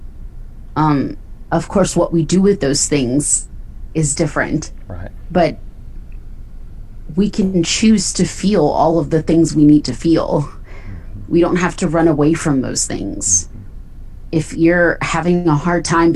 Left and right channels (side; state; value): both; identical; correlation 1.00